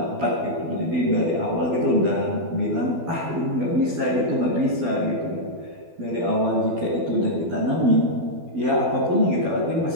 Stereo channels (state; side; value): late; left; 12 ms